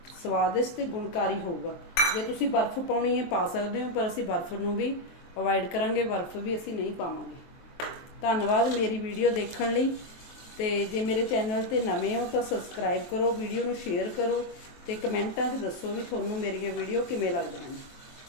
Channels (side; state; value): right; late; 23 ms